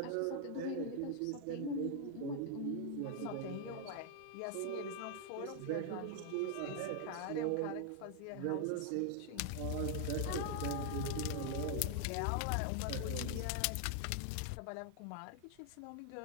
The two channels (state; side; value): different; both; correlation 0.00